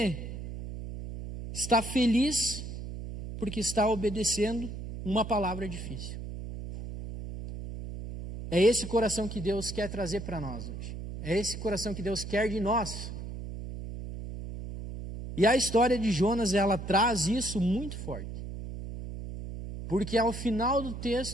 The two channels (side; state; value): right; noise; hum, 8 dB below the sound